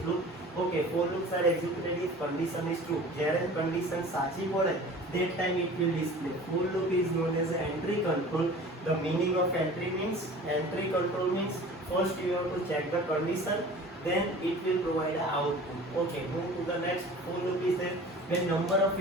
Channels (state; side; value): normal; both; correlation 0.42